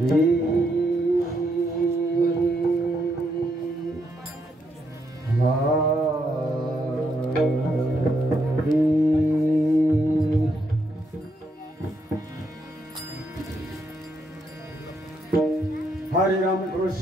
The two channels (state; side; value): normal; both; correlation 0.77